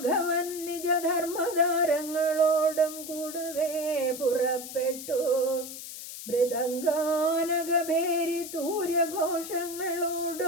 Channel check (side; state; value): left; noise; hiss, 10 dB below the sound